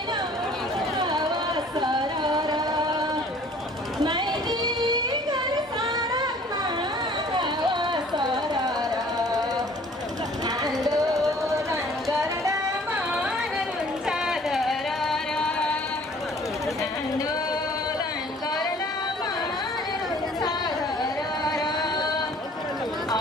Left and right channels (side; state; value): both; normal; correlation 0.53